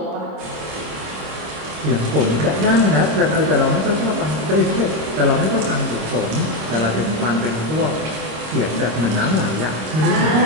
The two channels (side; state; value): left; late; 26 ms